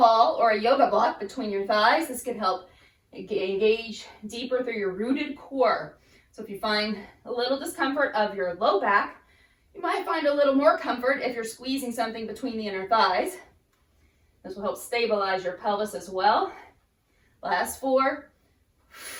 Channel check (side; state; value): both; identical; correlation 1.00